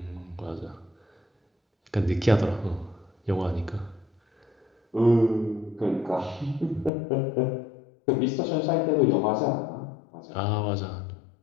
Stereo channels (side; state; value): right; drops out; at 6.9 s